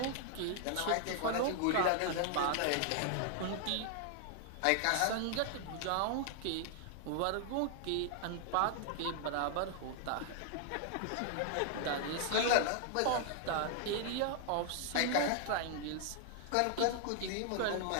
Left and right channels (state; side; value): different; both; correlation 0.00